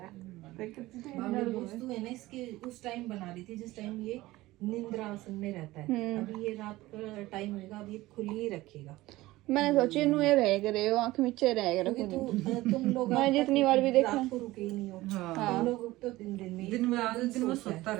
है दोस्तों है ना इसके उस टाइम बना रही थी जिस टाइम ये निंद्रा आसन में रहता है अभी ये रात का टाइम होगा अब ये खुली ही रखेगा मैंने सोची इनू ये रह करे आँख नीचे रह करे तुम लोग मैंने जितनी बार भी देखा रात को रुके ही नहीं हो तुम लोग तो दिन में सोता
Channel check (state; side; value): quieter; left; 18.1 dB